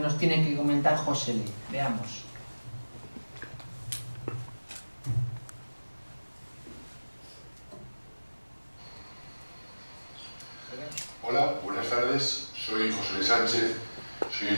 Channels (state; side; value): inverted; both; correlation -1.00